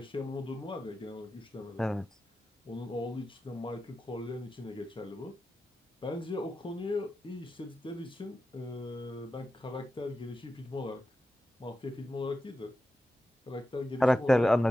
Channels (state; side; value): normal; both; correlation 0.91